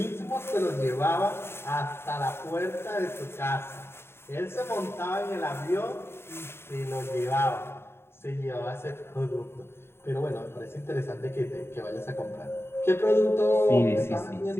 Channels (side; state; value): right; late; 0.12 ms